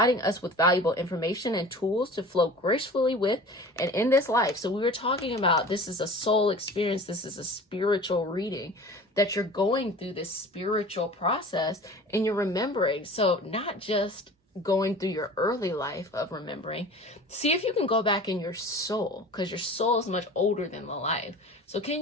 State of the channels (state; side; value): normal; both; correlation 0.40